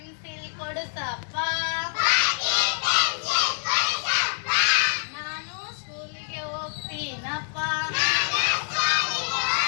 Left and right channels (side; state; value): right; silent; 61 dB below the other